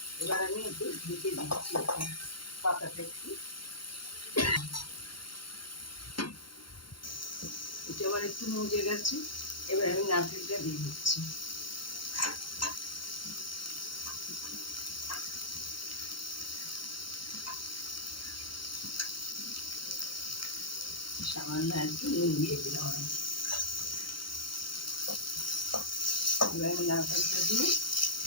এবার আমি একটু ঢেকে দিচ্ছি পাতাটা একটু। এটা আবার একটু মজে গেছে, এবার আমি নারকেলটা দিয়ে দিচ্ছি। সামান্য একটু নুন দিয়ে দিলাম আমি। এবার আমি নারকেলটা দিয়ে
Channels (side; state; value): right; late; 0.73 ms